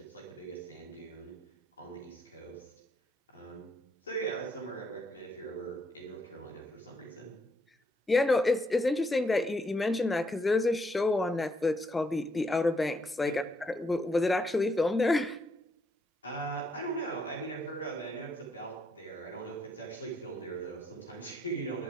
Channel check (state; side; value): normal; both; correlation 0.75